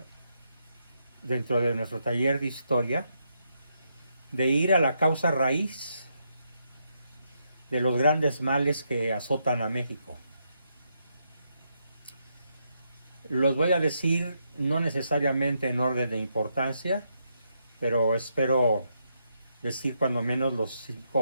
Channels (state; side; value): inverted; both; correlation -0.80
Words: dentro de nuestro taller de historia, de ir a la causa raíz de los grandes males que azotan a México. Los voy a decir no necesariamente en orden de importancia, pero espero decir cuando menos los